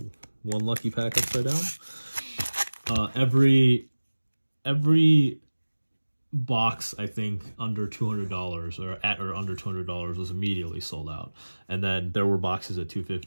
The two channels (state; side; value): inverted; both; correlation -1.00